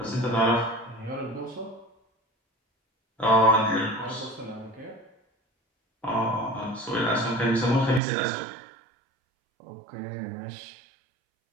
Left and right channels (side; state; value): left; drops out; at 8.0 s